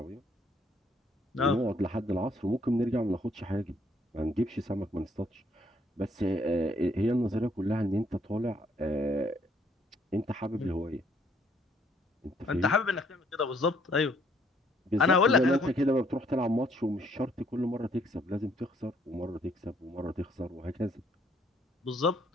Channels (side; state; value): both; normal; correlation 0.66